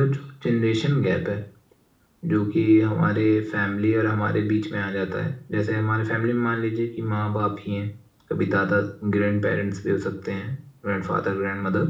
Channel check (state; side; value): identical; both; correlation 1.00